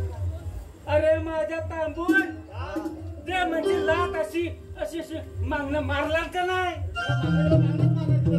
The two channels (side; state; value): both; identical; correlation 1.00